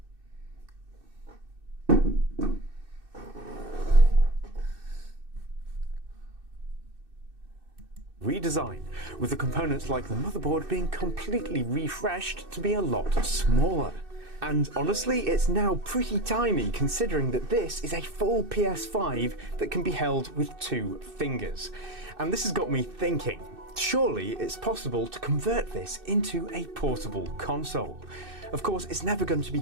Redesign, with the components like the motherboard being completely refreshed to be a lot smaller. And honestly, it's now pretty tiny considering that this is a full PS5 that can be held with 2 fingers. And this has got me thinking, surely it's possible to convert this into a portable console. Of course, it's never going to be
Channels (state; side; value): late; left; 2.6 ms